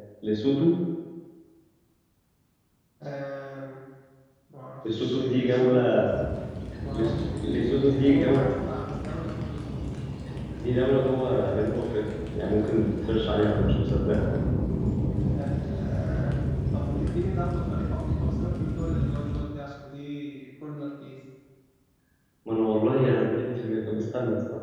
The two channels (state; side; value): identical; both; correlation 1.00